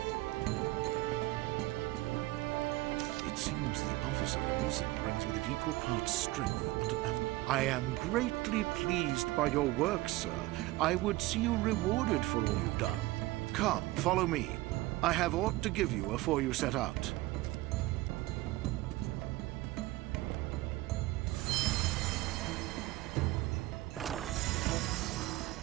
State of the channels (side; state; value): left; quieter; 18.8 dB